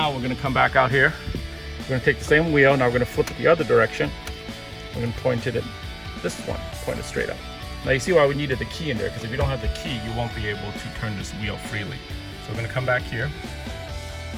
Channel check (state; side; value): identical; both; correlation 1.00